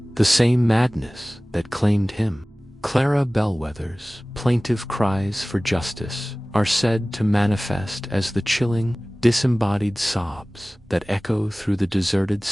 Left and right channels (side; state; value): both; normal; correlation 0.98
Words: The same madness that claimed him. Clara Bellwether's plaintive cries for justice are said to manifest as the chilling, disembodied sobs that echo through the deserted